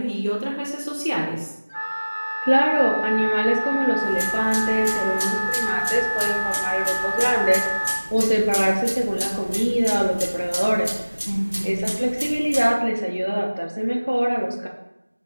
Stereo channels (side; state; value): both; inverted; correlation -1.00